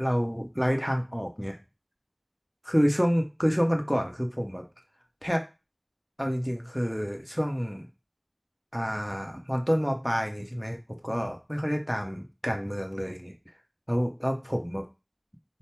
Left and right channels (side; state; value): both; identical; correlation 1.00